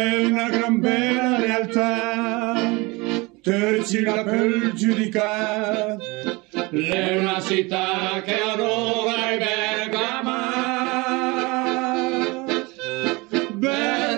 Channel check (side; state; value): left; quieter; 25.0 dB